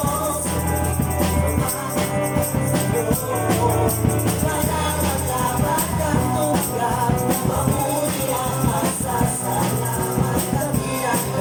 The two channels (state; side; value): identical; both; correlation 1.00